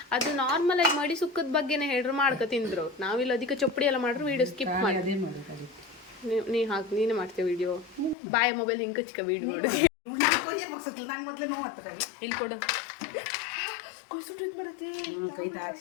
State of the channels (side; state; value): right; drops out; at 8.2 s